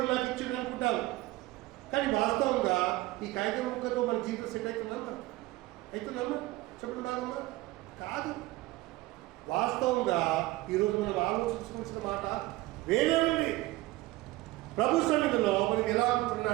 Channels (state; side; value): quieter; left; 19.0 dB